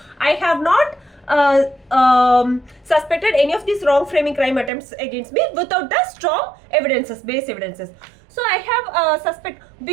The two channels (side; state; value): left; drops out; at 4.7 s